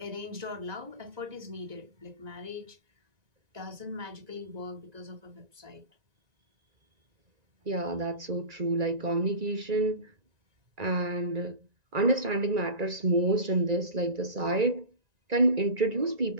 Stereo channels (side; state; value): left; late; 1.9 ms